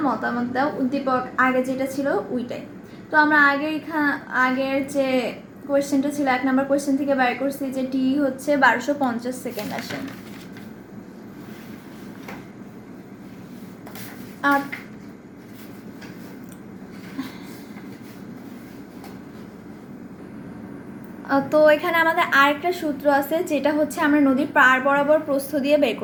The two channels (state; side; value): identical; both; correlation 1.00